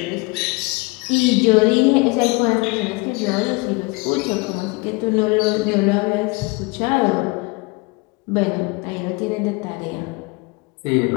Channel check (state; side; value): quieter; right; 26.6 dB